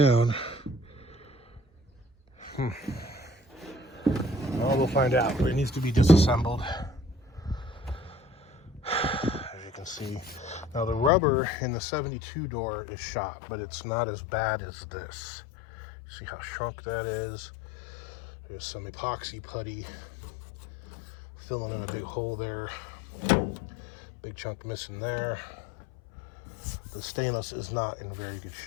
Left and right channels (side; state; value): right; drops out; at 11.1 s